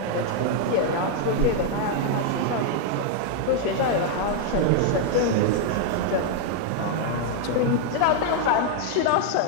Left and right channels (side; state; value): both; different; correlation 0.00